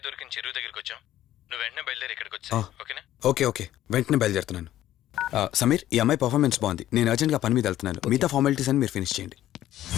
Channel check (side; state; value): right; quieter; 13.2 dB